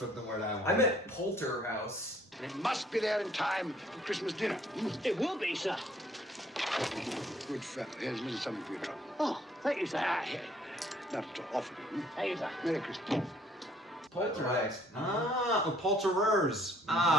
what the word I want. I meant Polterhouse. It must be there in time for Christmas dinner. It will be, sir. Good fellow. Here's a little something for your trouble. Oh, thank you, sir. Not at all often. Thank you, sir. Merry Christmas. Poltergeist. Polterers.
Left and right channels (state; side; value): normal; both; correlation 0.62